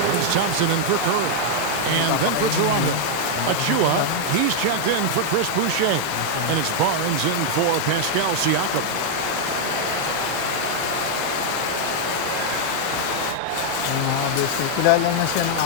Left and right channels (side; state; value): both; different; correlation 0.00